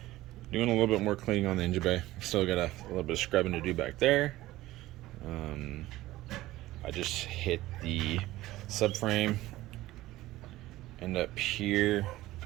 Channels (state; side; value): quieter; left; 16.8 dB